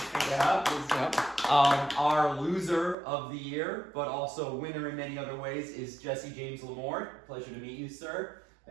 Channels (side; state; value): left; drops out; at 3.0 s